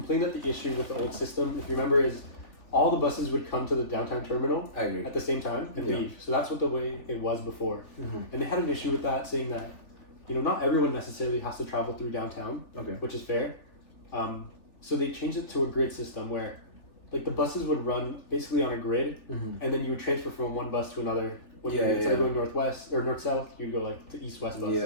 that the issue with the old system, if you remember, is all the buses would come to the downtown terminal at the same time and leave. So that's what the way it was before. And they had an issue with that, saying that, you know, not everyone necessarily has to travel through downtown, which is fair. So they changed it to a grid system where like the buses would run basically on a grid and then you would transfer from one bus to another Instead of going northwest or north-south, you'd go like to east-west bus. Yeah.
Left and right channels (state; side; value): late; right; 3.4 ms